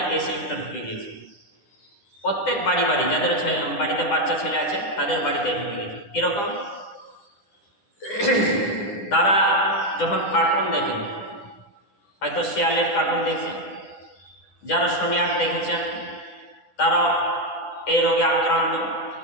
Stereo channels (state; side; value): late; right; 9.9 ms